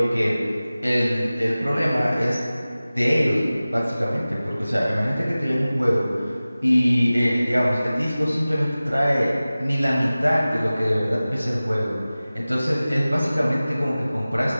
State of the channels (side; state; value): both; inverted; correlation -0.97